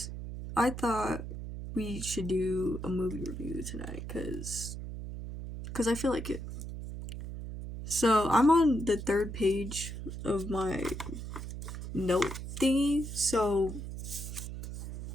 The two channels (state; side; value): noise; right; hum, 7 dB below the sound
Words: I thought we should do a movie review tonight because I feel like it. So I'm on the third page of my note thingy. So